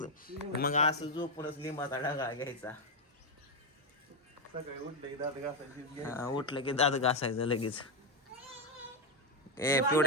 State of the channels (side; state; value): both; normal; correlation 0.06